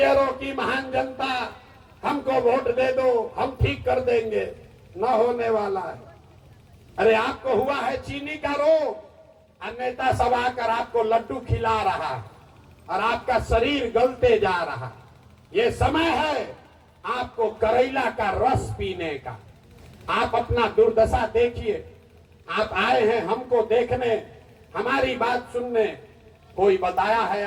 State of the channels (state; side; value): identical; both; correlation 1.00